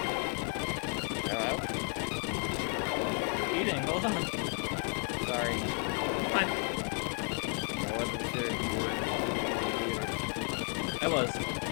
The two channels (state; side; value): quieter; right; 38.4 dB